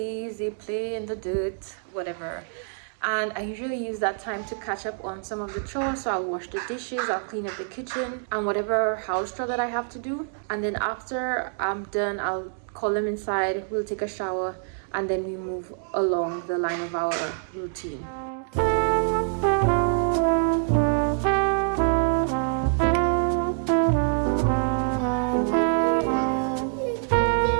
they play in the dirt, whatever. And I usually use that time to catch up on some of the chores. So I'll wash the dishes, I'll clean up the kitchen, and whatever house chore that I have to do. And then after I'm done, I'll call them inside, we'll take a shower, and then we move along the line of our routine.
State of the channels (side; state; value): left; silent; digital silence